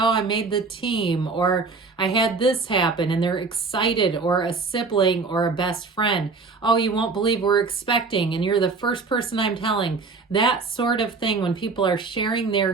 I made the team, or I had this happen, and they're excited, or a sibling or a best friend, oh, you won't believe we're expecting, and you're the first person I'm telling, that sort of thing. When people are sharing their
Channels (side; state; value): left; quieter; 4.3 dB